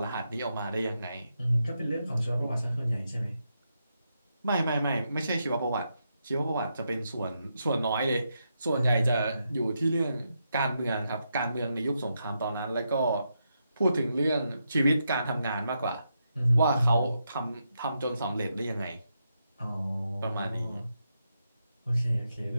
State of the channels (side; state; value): both; inverted; correlation -0.83